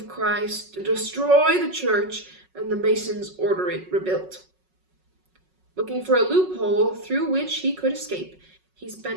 Christ destroy the church, and the masons order it rebuilt." Looking for a loophole through which he could escape, he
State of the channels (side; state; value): left; late; 5.4 ms